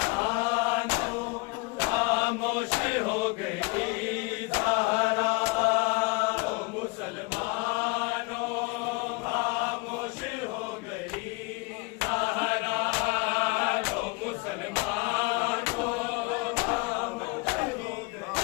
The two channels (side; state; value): right; quieter; 26.7 dB